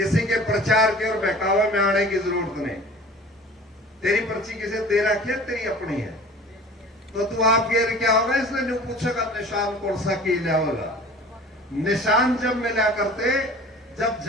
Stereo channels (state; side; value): normal; both; correlation 0.43